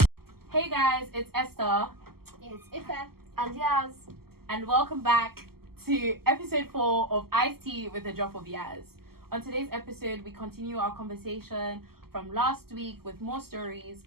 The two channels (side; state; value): left; late; 0.95 ms